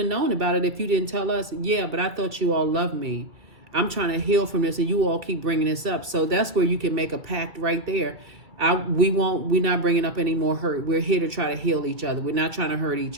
known about it if you didn't tell us. Yeah, but I thought you all loved me. I'm trying to heal from this, and you all keep bringing this up. So that's where you can make a pact right there. We're not bringing up any more hurt. We're here to try to heal each other. We're not trying to hurt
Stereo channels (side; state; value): left; late; 2.3 ms